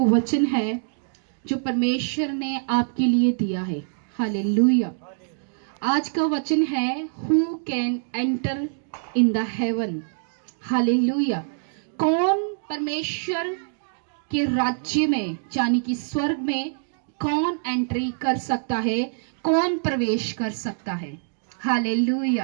वचन है जो परमेश्वर ने आपके लिए दिया है, हालेलुया। आज का वचन है Who can enter in the heaven? Hallelujah. कौन परमेश्वर के राज्य में यानी कि स्वर्ग में कौन एंट्री कर सकता है, कौन प्रवेश कर सकता है? हालेलुया।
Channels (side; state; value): left; silent; digital silence